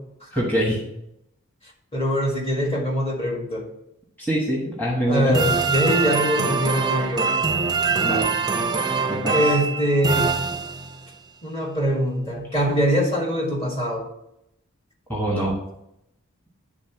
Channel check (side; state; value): both; normal; correlation 0.36